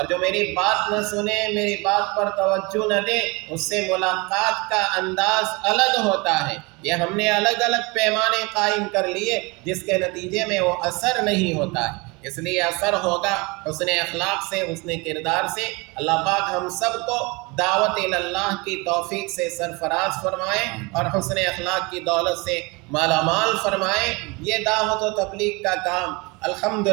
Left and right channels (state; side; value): quieter; left; 26.8 dB